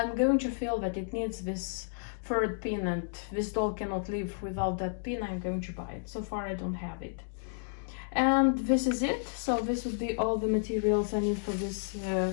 going to feel that it needs this 3rd pin and this doll cannot live without that pin, I'm going to buy it. So far I don't have it. And this is it. So this would be all the materials I need for this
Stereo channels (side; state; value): right; silent; digital silence